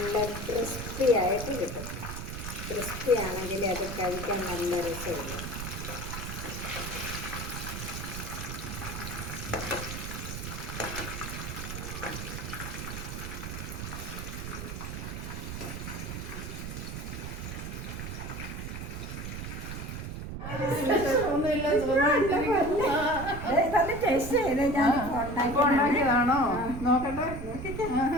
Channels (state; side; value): noise; right; rumble, 7 dB below the sound